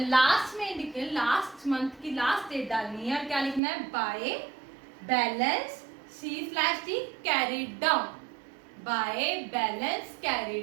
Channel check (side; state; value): left; drops out; at 3.6 s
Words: लास्ट में लिखे, लास्ट मंथ की लास्ट डेट डालनी है, और क्या लिखना है? By balance C/D carry down. Bye balance carry